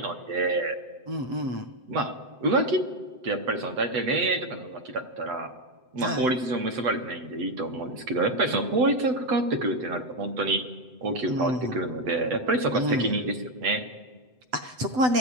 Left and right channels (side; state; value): left; late; 7.9 ms